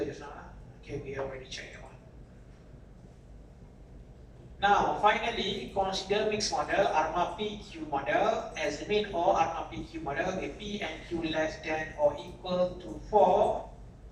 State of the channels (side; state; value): both; identical; correlation 1.00